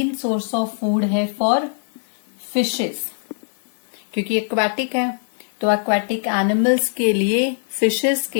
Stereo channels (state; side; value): silent; right; digital silence